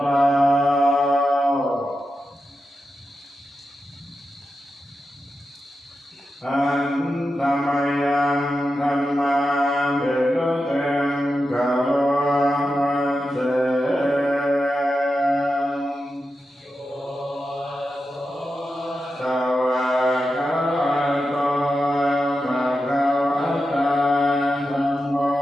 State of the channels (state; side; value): normal; both; correlation 0.90